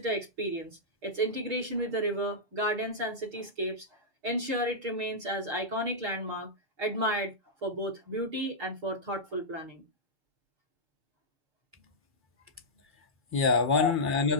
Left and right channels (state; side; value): late; left; 6.5 ms